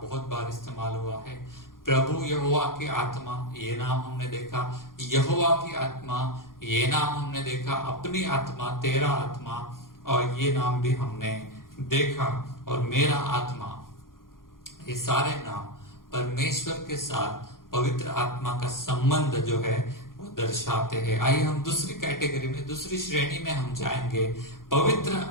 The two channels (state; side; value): late; right; 0.91 ms